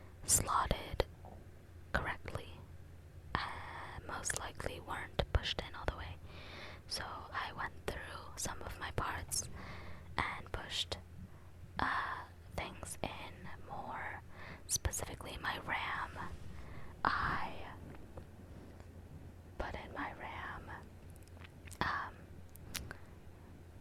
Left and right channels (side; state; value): both; identical; correlation 1.00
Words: slotted correctly, most likely weren't pushed in all the way. So I went through some of my parts and pushed things in more, specifically my RAM. I put in my RAM